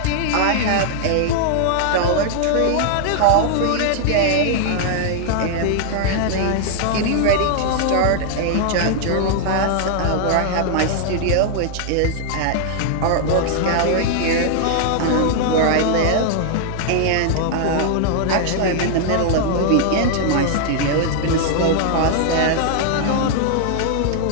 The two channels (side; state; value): both; different; correlation -0.01